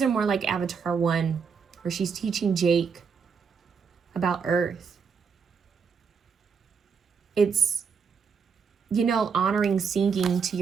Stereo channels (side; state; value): left; quieter; 6.0 dB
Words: are more like Avatar 1, where she's teaching Jake about earth. It's, you know, honoring, singing to